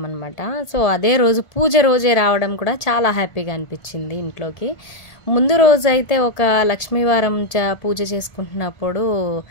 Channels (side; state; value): right; late; 1.8 ms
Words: సో అదే రోజు పూజ రోజే రావడం కూడా చాలా హ్యాపీగా అనిపించింది ఇంట్లోకి. ముందు రోజు అయితే ఒక లక్ష్మీవారం పూజ చేసుకుంటున్నప్పుడు